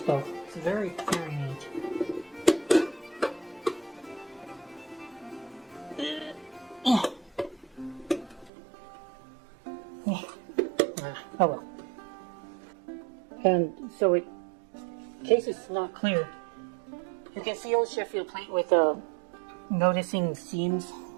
It's very, very neat. Oh well. And so in case it's not clear, you can see old Sheffield plate with noticing seams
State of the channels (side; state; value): left; drops out; at 8.5 s